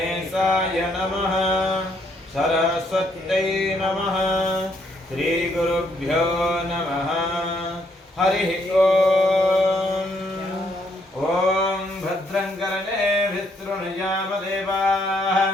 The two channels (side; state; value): both; normal; correlation 0.72